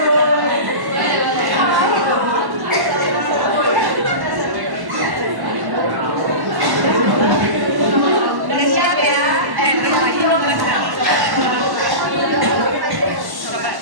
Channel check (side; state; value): left; late; 1.1 ms